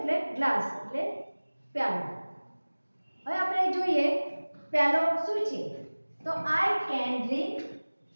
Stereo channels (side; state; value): both; inverted; correlation -1.00